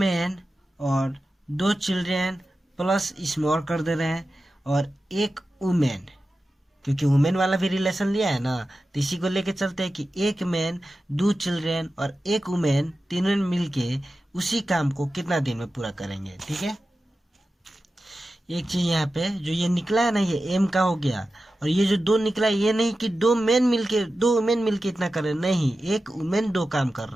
और 2 चिल्ड्रेन प्लस इसमें और कर दे रहे हैं और 1 वुमेन, क्योंकि वुमेन वाला भी रिलेशन लिया है ना, तो इसी को लेके चलते हैं कि एक मैन, 2 चिल्ड्रेन और एक वुमेन, तीनों मिलके उसी काम को कितना दिन में पूरा करेंगे। ठीक है, एक चीज यहाँ पे जो ये निकला है ना, ये एम का हो गया, और ये जो 2 निकला है, ये नहीं कि 2 वुमेन मिलके इतना कर रहे हैं, नहीं, एक वुमेन 2 काम कर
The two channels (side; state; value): both; normal; correlation 0.93